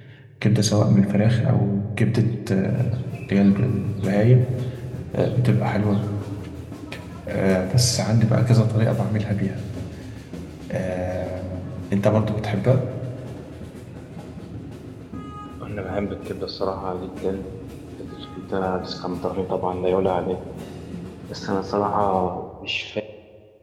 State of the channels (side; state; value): both; identical; correlation 1.00